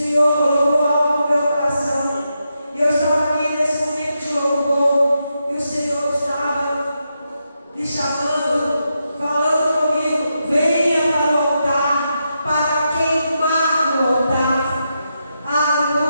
colocou algo no meu coração. E eu estava aqui nesse momento de louvor. E o Senhor estava me chamando, falando comigo: venha para o altar, para queimar no altar.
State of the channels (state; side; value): inverted; both; correlation -0.85